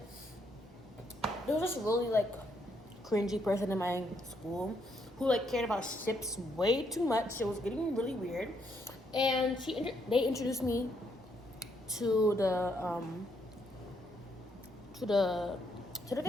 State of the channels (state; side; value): normal; both; correlation 0.74